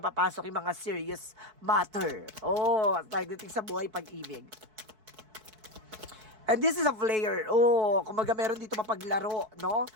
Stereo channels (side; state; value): left; late; 4.6 ms